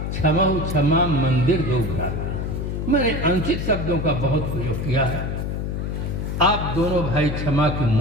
क्षमहु क्षमा मंदिर दो भ्राता। मैंने अनुचित शब्दों का बहुत प्रयोग किया है। आप दोनों भाई क्षमा की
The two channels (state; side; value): noise; left; hum, 3 dB below the sound